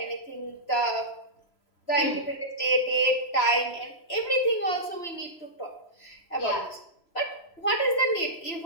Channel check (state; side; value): late; right; 3.0 ms